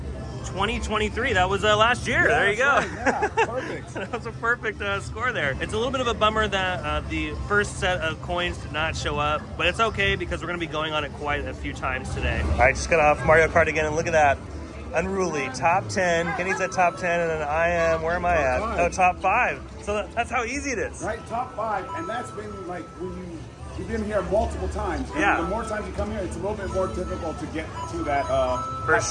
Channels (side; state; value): both; identical; correlation 1.00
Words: 2023. That was last year. Yeah, there you go. right. Yeah, perfect. That was a perfect score there. It's a little bit of a bummer that the first set of coins did not show up, but it's okay because we're going to be going on it quite a few times today. All right, just got off Mario Kart again, and look at that. Unruly, top 10. Kenny's at top 10, and then I am, where am I at? Oh, top 5. So that's how easy it is. Right, top 5, and that's been like when you've been here multiple times. And Yeah. the more times you come here, it's a little bit more difficult to get to that For